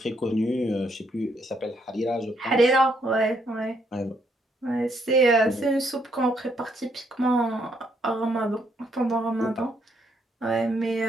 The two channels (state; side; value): normal; both; correlation 0.73